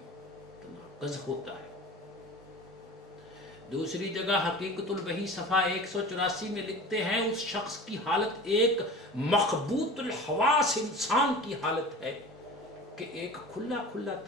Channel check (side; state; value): both; normal; correlation 0.37